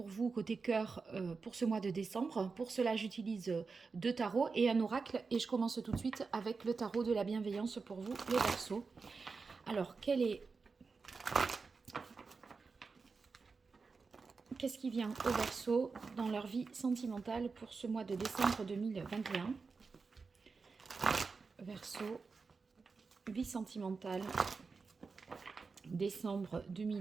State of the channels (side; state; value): left; quieter; 4.6 dB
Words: vous côté cœur pour ce mois de décembre. Pour cela, j'utilise deux tarots et un oracle. Et je commence tout de suite avec le tarot de la bienveillance pour vous les Verseaux. Alors, qu'est-ce qui vient au Verseau dans leur vie sentimentale pour ce mois de décembre 2021? Verseau, vie sentimentale, décembre